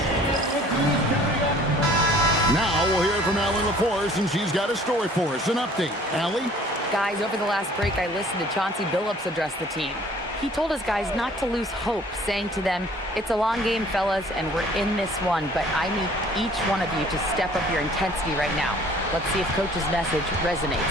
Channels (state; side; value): normal; both; correlation 0.53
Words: Now we'll hear from Allie LaForce, and she's got a story for us. An update. Allie? Guys, over the last break, I listened to Chauncey Billups address the team. He told his guys not to lose hope, saying to them, "It's a long game, fellas, and we're in this one, but I need each one of you to step up your intensity right now." Let's see if Coach's message